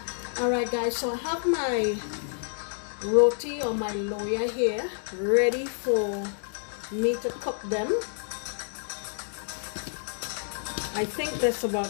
Alright guys, so I have my roti or my loya here ready for me to cook them. I think there's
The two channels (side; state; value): right; silent; digital silence